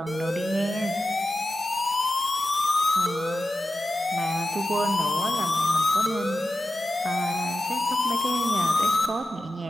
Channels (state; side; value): normal; both; correlation 0.92